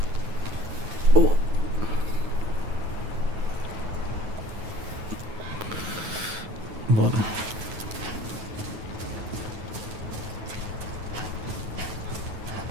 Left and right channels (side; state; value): left; late; 9.3 ms